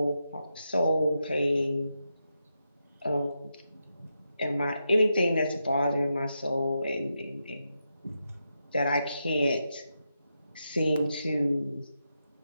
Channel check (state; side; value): inverted; both; correlation -0.86